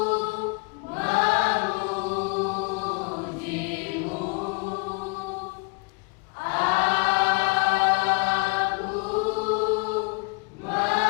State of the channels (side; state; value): right; quieter; 31.2 dB